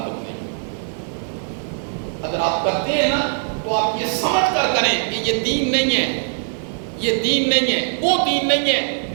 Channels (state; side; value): silent; left; 65 dB below the other